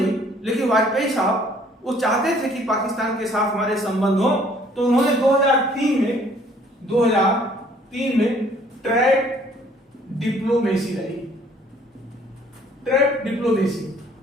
लेकिन वाजपेयी साहब वो चाहते थे कि पाकिस्तान के साथ हमारे संबंध हो, तो उन्होंने 2003 में ट्रैक डिप्लोमेसी लाई। Track diplomacy,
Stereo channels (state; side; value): normal; both; correlation 0.59